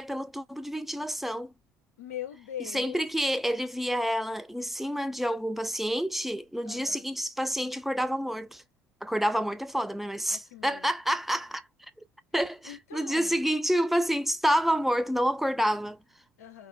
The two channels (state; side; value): normal; both; correlation 0.93